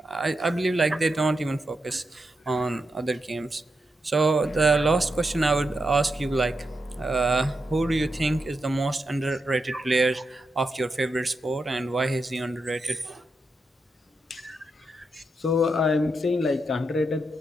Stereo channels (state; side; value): normal; both; correlation 0.85